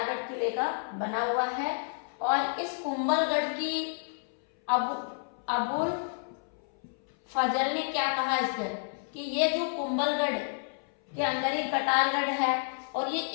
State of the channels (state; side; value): silent; right; 58 dB below the other